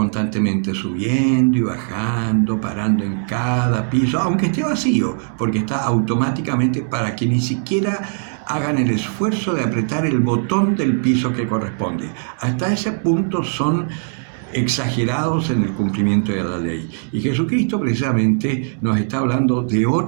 subiendo y bajando, parando en cada piso, aunque esté vacío, porque está automáticamente para que ni siquiera hagan el esfuerzo de apretar el botón del piso que corresponde. Hasta ese punto son exagerados en el cumplimiento de la ley. Y Jesucristo precisamente nos está hablando de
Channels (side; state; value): left; silent; digital silence